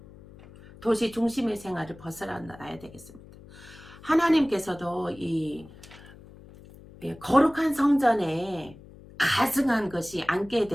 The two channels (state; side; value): noise; left; hum, 20 dB below the sound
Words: 도시 중심의 생활을 벗어나야 되겠습니다. 하나님께서도 이 거룩한 성전에 가증한 것이 앉게